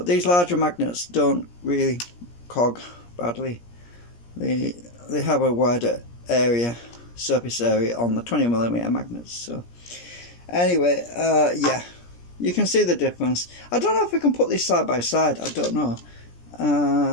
these larger magnets don't really cog badly. They have a wider area, surface area on the 20mm magnets. So anyway, yeah, you can see the difference. I don't know if we can put these side by side. I don't know.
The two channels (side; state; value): right; late; 17 ms